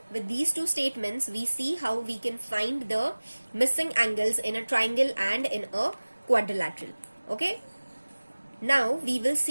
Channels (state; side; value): inverted; both; correlation -1.00